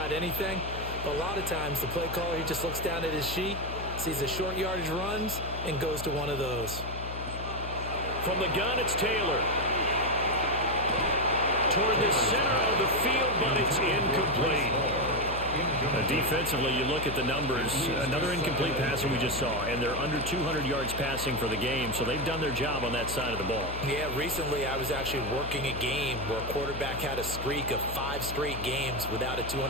anything. But a lot of times, the play caller, he just looks down at his sheet, sees the short yardage runs, and goes to one of those. From the gun, it's Taylor. Toward the center of the field, but it's incomplete. Defensively, you look at the numbers. Another incomplete passer we just saw, and they're under 200 yards passing for the game, so they've done their job on that side of the ball. Yeah, recently I was actually working a game where a quarterback had a streak of 5 straight games without a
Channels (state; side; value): noise; left; hum, 8 dB below the sound